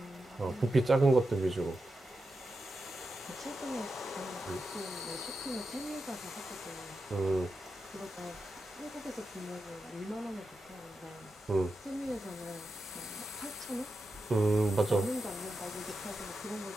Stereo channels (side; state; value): both; normal; correlation 0.89